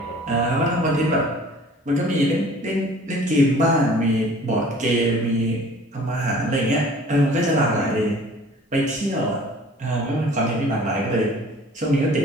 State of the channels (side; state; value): both; normal; correlation 0.49